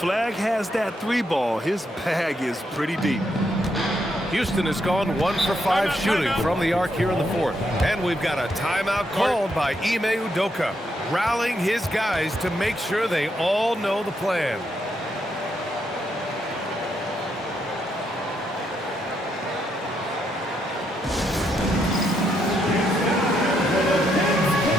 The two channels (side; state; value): both; normal; correlation 0.78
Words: has that 3 ball. His bag is pretty deep. Houston has gone 1 for 5 shooting from the arc here in the fourth. And we've got a timeout called by Ime Udoka, rallying his guys to make sure they all know the plan.